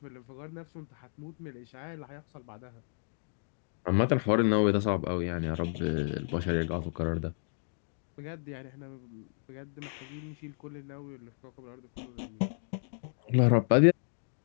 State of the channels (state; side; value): silent; right; digital silence